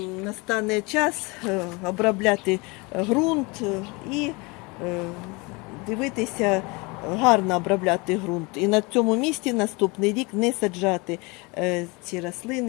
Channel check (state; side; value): quieter; right; 27.0 dB